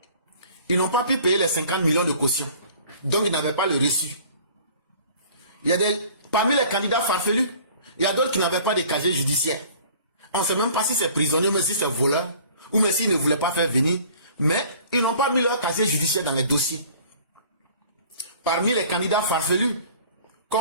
ils n'ont pas pu payer les 50 millions de caution. Donc, ils n'avaient pas le reçu. Il y a parmi les candidats farfelus, il y a d'autres qui n'avaient pas de casier judiciaire. On ne sait même pas si c'est prisonnier, mais si c'est voleur, ou même s'ils ne voulaient pas faire venir. Mais ils n'ont pas mis leur casier judiciaire dans les dossiers. Parmi les candidats farfelus,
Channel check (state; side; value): inverted; both; correlation -0.49